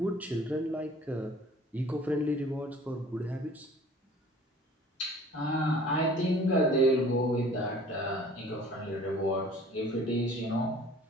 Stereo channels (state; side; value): normal; both; correlation 0.49